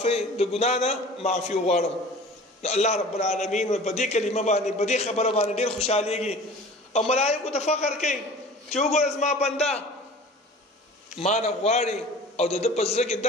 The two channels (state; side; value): normal; both; correlation 0.43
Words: د ګناه نه معافي وغواړم. الله رب العالمین په دې کلمه باندې په دې خبره باندې ډېر خوشحالېږي او ملایکو ته فخر کوي چې وګوره زما بنده ما نه غواړي او د ده په زړه کې